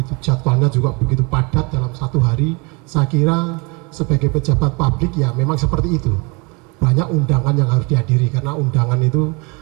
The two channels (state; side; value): quieter; left; 29.5 dB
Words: jadwalnya juga begitu padat dalam satu hari. Saya kira sebagai pejabat publik ya memang seperti itu. Banyak undangan yang harus dihadiri, karena undangan itu